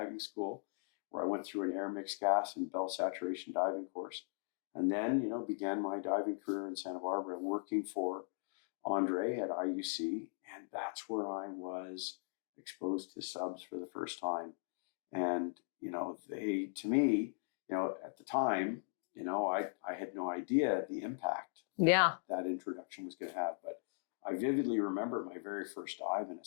school where I went through an air mixed gas and bell saturation diving course. And then, began my diving career in Santa Barbara, working for Andre at IUC. And that's where I was exposed to subs for the first time. And, they, to me, at the time, I had no idea the impact that introduction was going to have. But I vividly remember my very first dive in a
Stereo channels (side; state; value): right; silent; digital silence